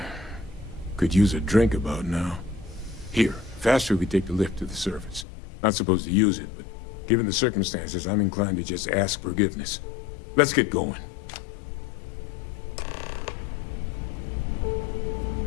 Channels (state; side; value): drops out; right; at 5.2 s